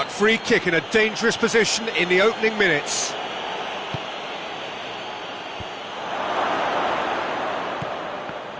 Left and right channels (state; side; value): identical; both; correlation 1.00